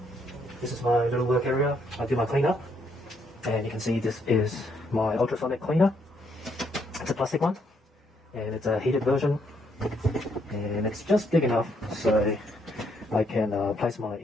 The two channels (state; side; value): normal; both; correlation 0.73